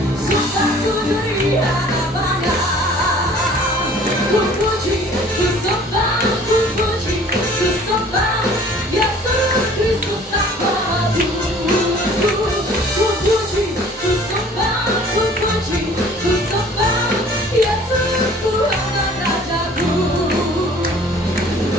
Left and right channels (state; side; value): normal; both; correlation 0.51